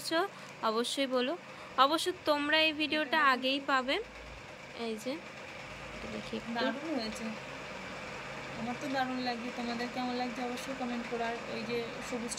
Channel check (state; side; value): identical; both; correlation 1.00